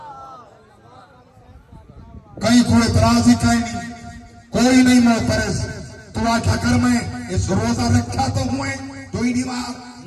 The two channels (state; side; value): identical; both; correlation 1.00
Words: کہیں کوئی اعتراض ہی کہیں نہیں، کوئی نہیں معترض. تو آکھا کر میں اس روزہ رکھا تو ہوئے جو ہی دیوار